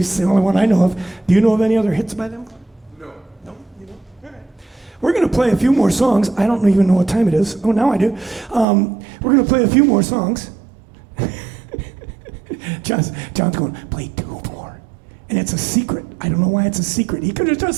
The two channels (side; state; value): left; drops out; at 8.7 s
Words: the only one I know of. Do you know of any other hits by them? No. No? You know? All right. We're going to play a few more songs. I don't even know what time it is. Oh, now I do. We're going to play a few more songs. John's going, play 2 more. And it's a secret. I don't know why it's a secret. He could have